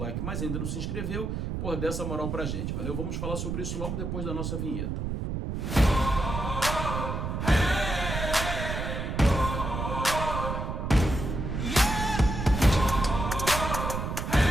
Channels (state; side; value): noise; right; rumble, 3 dB below the sound